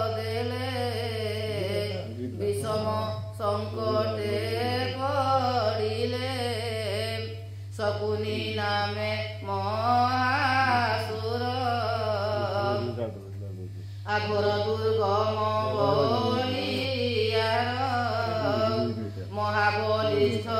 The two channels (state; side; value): identical; both; correlation 1.00